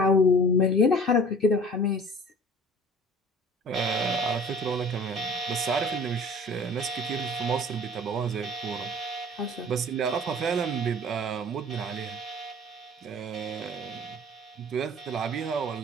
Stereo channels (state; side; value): normal; both; correlation 0.45